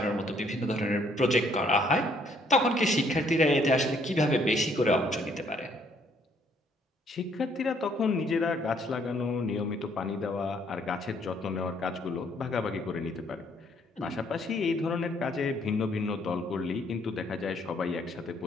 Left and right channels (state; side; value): normal; both; correlation 0.66